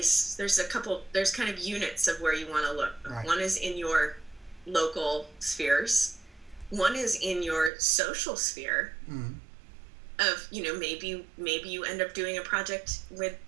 There's kind of units of where you want to look. Right. One is in your local spheres. One is in your social sphere. Of, you know, maybe you end up doing a project with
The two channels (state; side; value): drops out; left; at 7.7 s